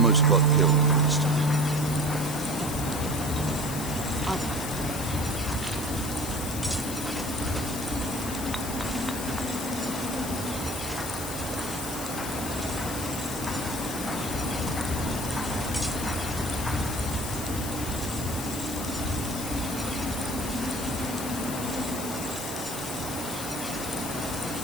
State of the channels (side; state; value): left; noise; hiss, 7 dB below the sound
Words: got killed this time.